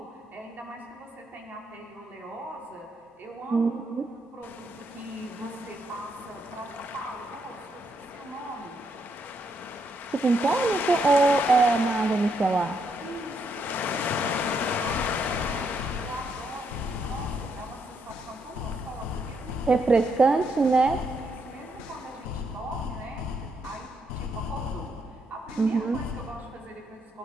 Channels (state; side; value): normal; both; correlation 0.76